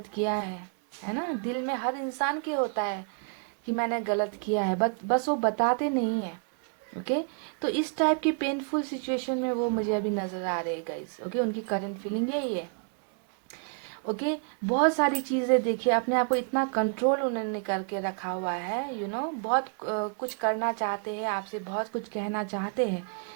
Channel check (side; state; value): left; quieter; 39.8 dB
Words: किया है ना, दिल में हर इंसान के होता है कि मैंने गलत किया है, बस वो बताते नहीं है। ओके, तो इस टाइप की पेनफुल सिचुएशन में वो मुझे अभी नज़र आ रहे हैं गाइस। ओके, उनकी करंट फीलिंग यही है। ओके, बहुत सारी चीज़ें देखिए, अपने आप को इतना कंट्रोल उन्होंने करके रखा हुआ है, बहुत कुछ करना चाहते हैं, आपसे बहुत कुछ कहना चाहते